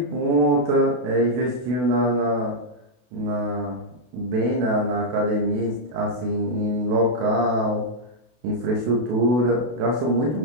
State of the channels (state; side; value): late; left; 32 ms